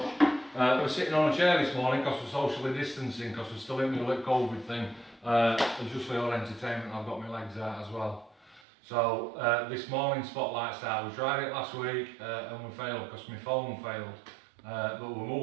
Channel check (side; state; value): left; drops out; at 8.6 s